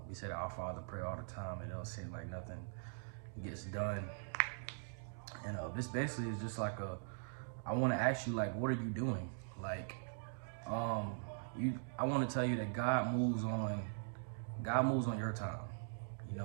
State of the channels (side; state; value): left; silent; digital silence